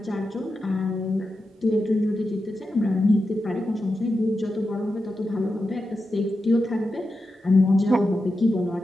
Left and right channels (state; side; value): normal; both; correlation 0.90